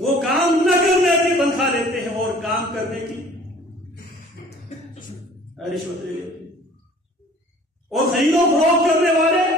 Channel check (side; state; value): both; normal; correlation 0.51